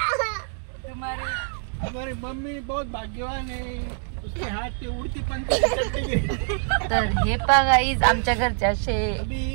तुम्हारे हमारी मम्मी बहुत भाग्यवान है. उसके हाथ पे उड़ती पंछी की टट्टी गिरी. तर हे पहा गाईज आमच्या घरचे असे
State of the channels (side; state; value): left; silent; digital silence